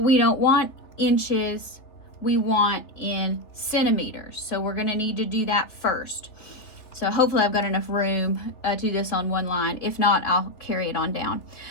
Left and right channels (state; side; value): late; right; 3.6 ms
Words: we don't want inches, we want in centimeters. So we're going to need to do that first. So hopefully I've got enough room to do this on one line. If not, I'll carry it on down.